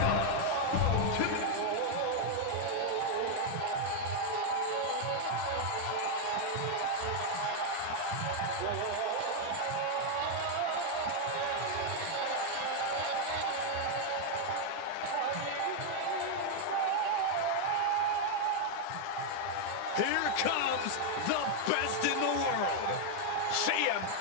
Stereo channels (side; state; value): both; different; correlation 0.00